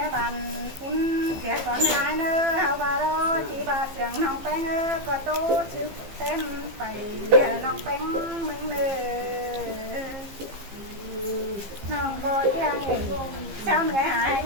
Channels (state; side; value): late; left; 15 ms